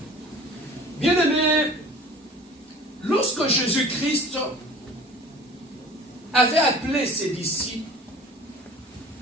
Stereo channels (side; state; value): both; normal; correlation 0.44